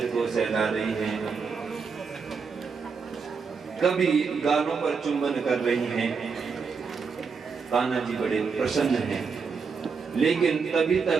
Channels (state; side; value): quieter; left; 5.4 dB